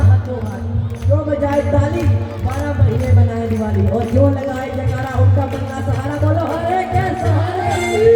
हाथों हाथ, जो बजाए ताली 12 महीने बनाए दिवाली, और जो लगाए जयकारा उनका बनना सहारा। बोलो हरे के सहारे।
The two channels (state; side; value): identical; both; correlation 1.00